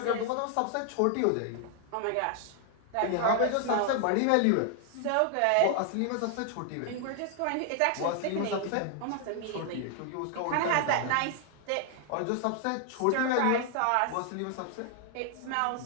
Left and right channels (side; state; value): both; different; correlation 0.00